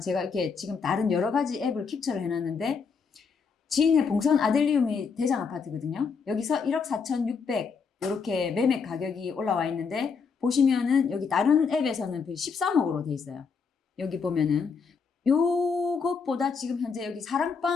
이렇게 지금 다른 여러 가지 앱을 캡처를 해놨는데 지인의 봉선 아들리움이 대장 아파트거든요. 여기서 1억 4,600 이렇게 매매 가격이 올라와 있는데 보시면은 여기 다른 앱에서는 13억으로 돼 있어요. 여기 보면은 요것보다 지금 현재 여기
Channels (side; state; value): right; quieter; 5.5 dB